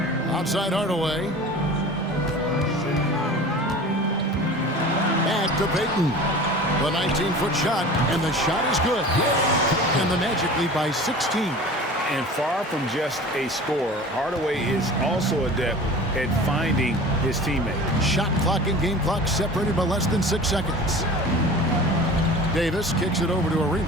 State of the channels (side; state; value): both; normal; correlation 0.39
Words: Outside Hardaway. Back to Payton. The 19-foot shot, and the shot is good. And the Magic lead by 16. And far from just a scorer, Hardaway is also adept at finding his teammate. Shot clock and game clock separated by less than 6 seconds. Davis kicks it over to